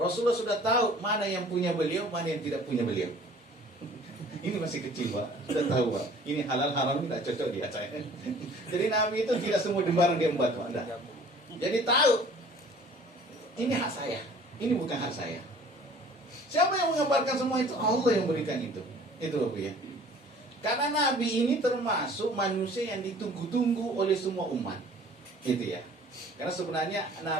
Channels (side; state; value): both; normal; correlation 0.51